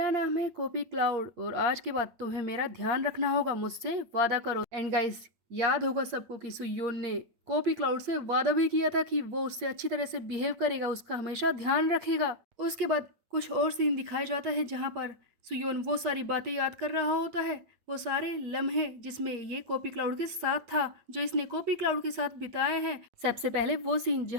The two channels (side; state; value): left; late; 8.5 ms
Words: नाम है कॉपी क्लाउड और आज के बाद तुम्हें मेरा ध्यान रखना होगा, मुझसे वादा करो। एंड गाइस, याद होगा सबको कि सुयोन ने कॉपी क्लाउड से वादा भी किया था कि वो उससे अच्छी तरह से बिहेव करेगा, उसका हमेशा ध्यान रखेगा। उसके बाद कुछ और सीन दिखाया जाता है जहाँ पर सुयोन वो सारी बातें याद कर रहा होता है, वो सारे लम्हे जिसमें ये कॉपी क्लाउड के साथ था, जो इसने कॉपी क्लाउड के साथ बिताए हैं। सबसे पहले वो सीन